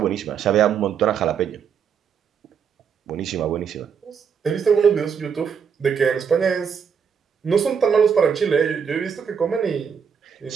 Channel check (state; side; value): quieter; left; 6.9 dB